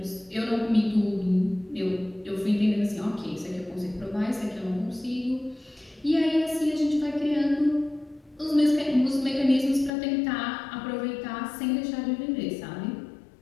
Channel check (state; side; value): drops out; right; at 9.9 s